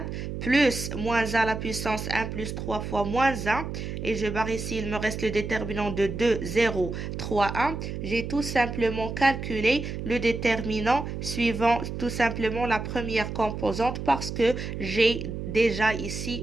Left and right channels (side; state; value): right; noise; hum, 6 dB below the sound